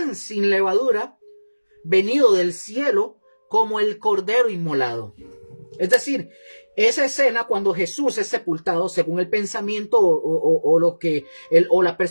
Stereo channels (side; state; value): both; inverted; correlation -1.00